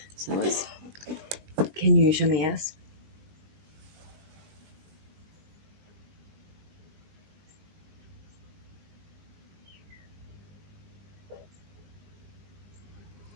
So let's... Can you show me yes?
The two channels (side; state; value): left; late; 19 ms